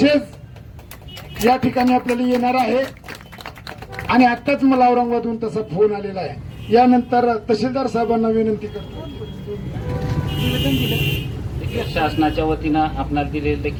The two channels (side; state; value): both; identical; correlation 1.00